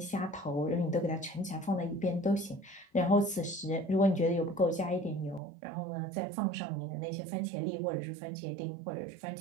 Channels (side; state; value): left; drops out; at 5.4 s